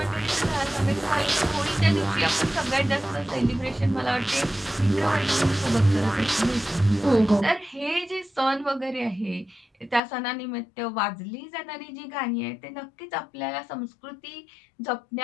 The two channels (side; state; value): right; drops out; at 10.0 s